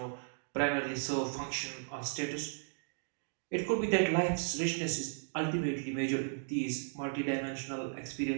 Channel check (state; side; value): silent; left; digital silence